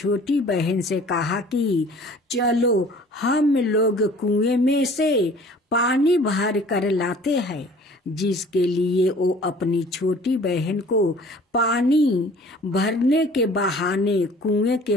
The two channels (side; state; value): both; normal; correlation 0.50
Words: बहन से कहा कि चलो हम लोग कुएं में से पानी भर कर लाते हैं। जिसके लिए वो अपनी छोटी बहन को पानी भरने के बहाने कुएं